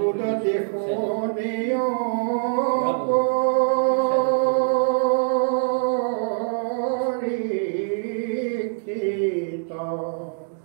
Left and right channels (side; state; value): left; silent; digital silence